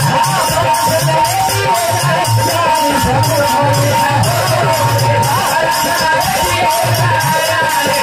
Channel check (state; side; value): identical; both; correlation 1.00